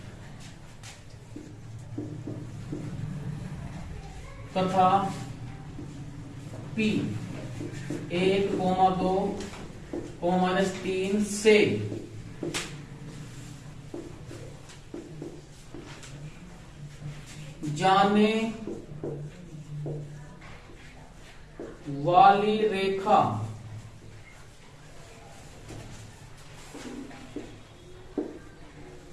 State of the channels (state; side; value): identical; both; correlation 1.00